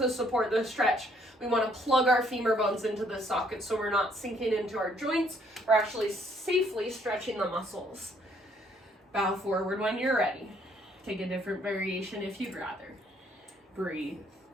support the stretch. We want to plug our femur bones into the socket so we're not sinking into our joints. We're actually safely stretching the muscles. Bow forward when you're ready. Take a different variation if you'd rather. Breathe.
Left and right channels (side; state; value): both; normal; correlation 0.66